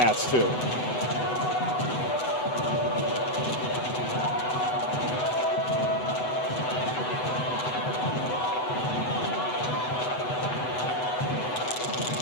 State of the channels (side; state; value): right; late; 7.9 ms